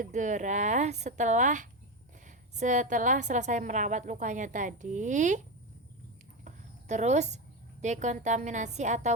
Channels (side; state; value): both; normal; correlation 0.14